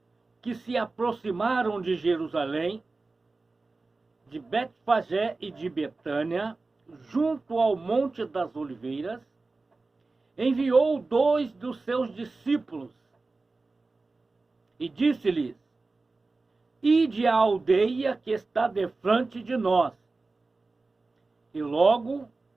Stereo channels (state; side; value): quieter; left; 3.6 dB